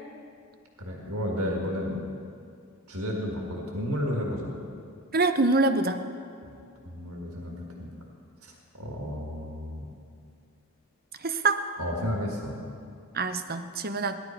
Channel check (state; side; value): normal; both; correlation 0.28